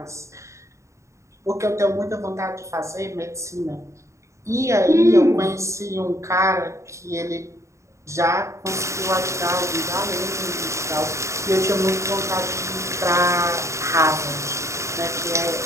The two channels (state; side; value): late; left; 0.14 ms